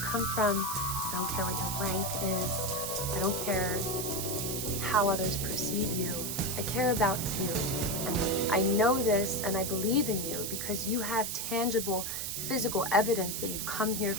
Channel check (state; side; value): noise; right; hiss, 3 dB below the sound